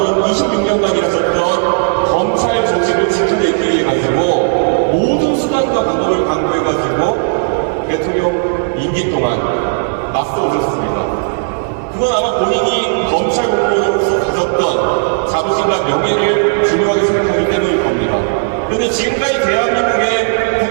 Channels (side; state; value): left; silent; digital silence